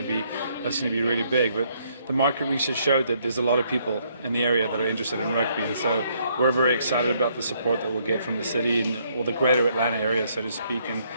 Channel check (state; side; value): inverted; both; correlation -0.69